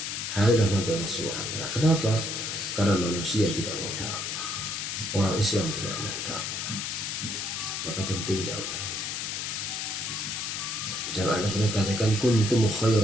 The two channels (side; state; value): left; noise; hiss, 3 dB below the sound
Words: Hal Allah Subhanahu wa ta'ala. Kenapa? Karena manusia tidak mau dakwah, orang Islam tidak mau dakwah. Maka penting dakwah. Jangan Allah katakan kuntum